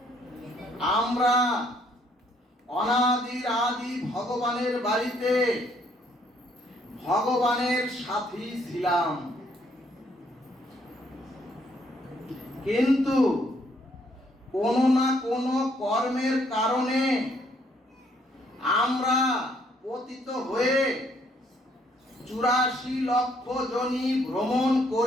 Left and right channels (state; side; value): normal; both; correlation 0.68